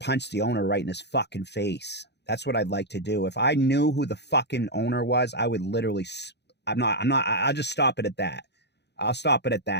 the owner right in his fucking face. That's what I'd like to do. If I knew who the fucking owner was, I would literally, I'll just stop it at that. I'll stop it at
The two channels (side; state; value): right; late; 0.49 ms